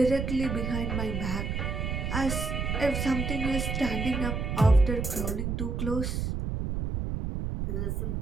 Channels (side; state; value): right; noise; rumble, 2 dB below the sound